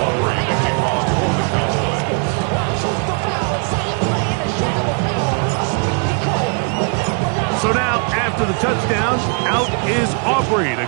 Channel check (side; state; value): left; quieter; 39.8 dB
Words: So now, after the touchdown, out is Aubrey to